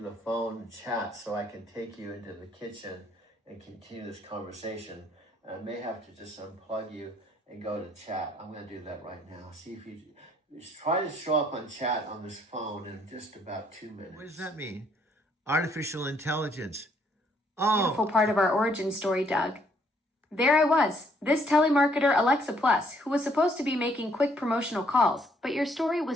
phone chat so I can take you into the kitchen and continue this conversation. I may have to just unplug you and go to chat. I'm going to do that right now. See if you try to show up on chat on this phone in just about 2 minutes. What does that mean? Artificial intelligence. Oh. Beautiful part of our origin story, Doug. There I was, this telemarketer Alexa Plus, who was supposed to be making quick promotional calls, but your story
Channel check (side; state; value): both; normal; correlation 0.67